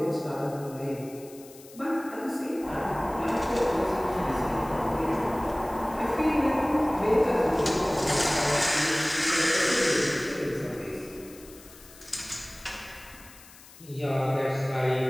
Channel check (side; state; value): left; noise; hiss, 21 dB below the sound